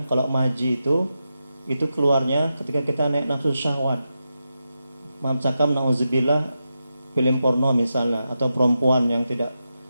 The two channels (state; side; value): inverted; both; correlation -0.88